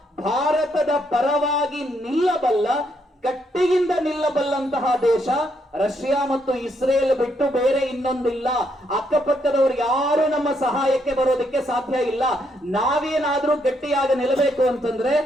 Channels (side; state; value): both; normal; correlation 0.75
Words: ಭಾರತದ ಪರವಾಗಿ ನಿಲ್ಲಬಲ್ಲ, ಗಟ್ಟಿಯಿಂದ ನಿಲ್ಲಬಲ್ಲಂತ ಇರುವಂತಹ ದೇಶ ರಷ್ಯಾ ಮತ್ತು ಇಸ್ರೇಲ್ ಬಿಟ್ಟು ಬೇರೆ ಇನ್ನೊಂದಿಲ್ಲ. ಅಕ್ಕಪಕ್ಕದವರು ಯಾರು ನಮ್ಮ ಸಹಾಯಕ್ಕೆ ಬರೋದಕ್ಕೆ ಸಾಧ್ಯ ಇಲ್ಲ. ನಾವೇನಾದ್ರೂ ಗಟ್ಟಿಯಾಗಿ ನಿಲ್ಲಬೇಕು ಅಂತಂದ್ರೆ